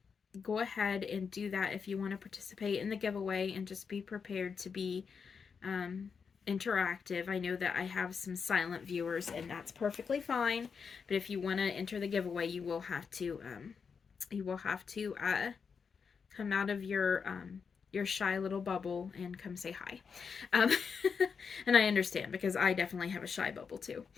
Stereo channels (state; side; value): quieter; right; 5.9 dB